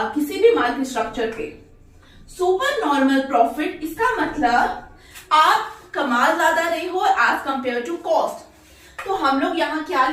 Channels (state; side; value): identical; both; correlation 1.00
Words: किसी भी मार्केट स्ट्रक्चर पे। सुपर नॉर्मल प्रॉफिट, इसका मतलब आप कमा ज्यादा रहे हो एज कंपेयर टू कॉस्ट। तो हम लोग यहाँ क्या